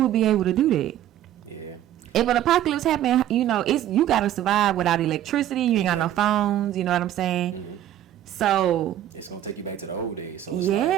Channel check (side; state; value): left; quieter; 12.1 dB